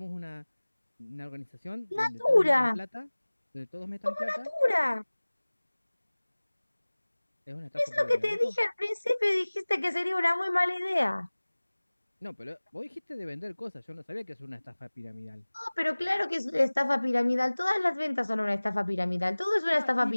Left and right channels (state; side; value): inverted; both; correlation -1.00